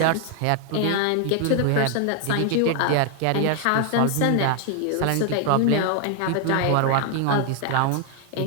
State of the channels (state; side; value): different; both; correlation 0.00